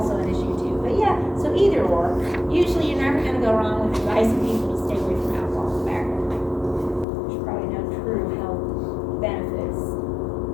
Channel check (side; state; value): right; drops out; at 7.1 s